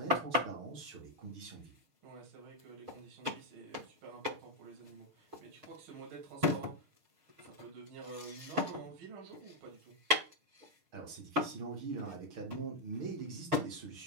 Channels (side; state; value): left; late; 6.5 ms